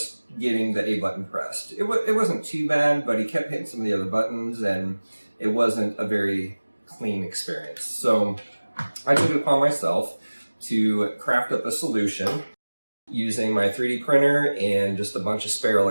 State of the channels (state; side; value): inverted; both; correlation -1.00